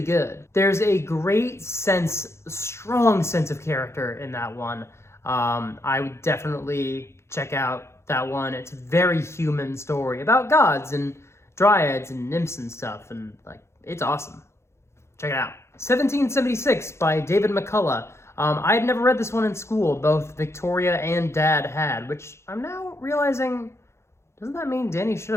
good. There's a great strong sense of character in that one. I would definitely check out that one. It's a very human story about gods and dryads and nymphs and stuff, and like, it's awesome. Check it out. 1776 by David McCullaugh. I had never read this one in school. Both Victoria and Dad had, which I'm now realizing, doesn't that mean Danny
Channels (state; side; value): late; right; 0.13 ms